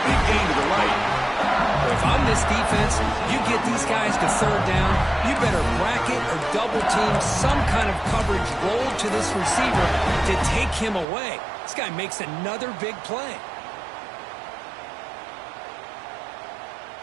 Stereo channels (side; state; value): left; drops out; at 11.1 s